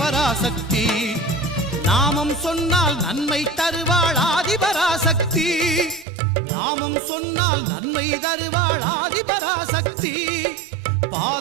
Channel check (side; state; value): left; drops out; at 6.1 s